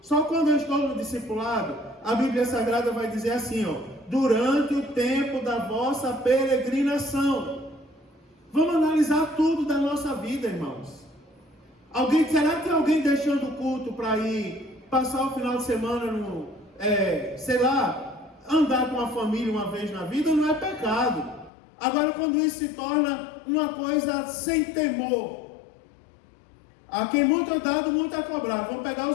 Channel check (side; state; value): right; drops out; at 21.5 s